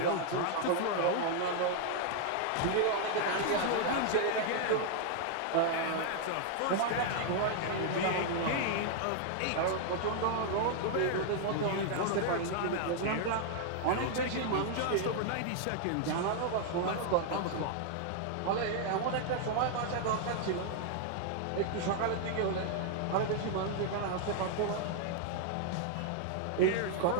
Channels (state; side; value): different; both; correlation 0.00